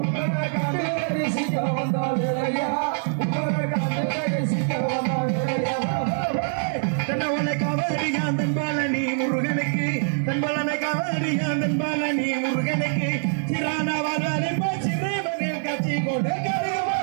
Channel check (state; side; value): silent; left; digital silence